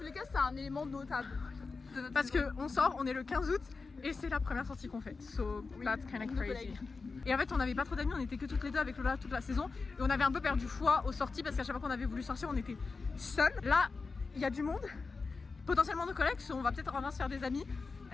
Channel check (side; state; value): right; quieter; 4.3 dB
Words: les cas c'est un élément notable. Parce que on sort, on est le 15 août et c'est la première sortie qu'on fait. So that's kind of crazy. Et en fait on n'avait pas trop d'amis, on était que toutes les deux avec Lola toute la saison. Et on avait un peu perdu foi aux sorties parce qu'à chaque fois qu'on avait voulu sortir on était seuls. Là il y a du monde, potentiellement nos collègues, so on va peut-être enfin se faire des amis.